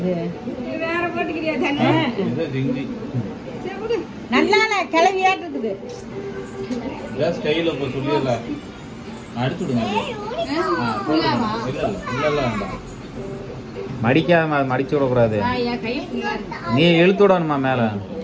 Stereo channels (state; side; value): identical; both; correlation 1.00